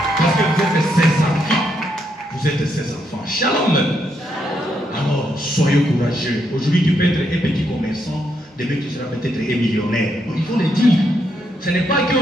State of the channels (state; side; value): normal; both; correlation 0.78